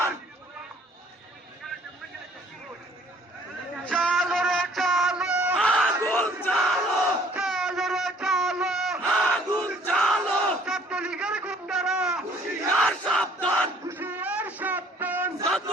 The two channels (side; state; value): both; normal; correlation 0.57